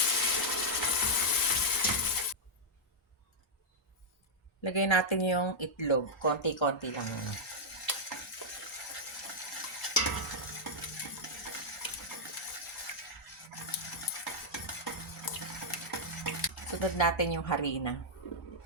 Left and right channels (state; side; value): normal; both; correlation -0.05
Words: Lagay natin yung itlog. Konti-konti lang. Sunod natin yung harina.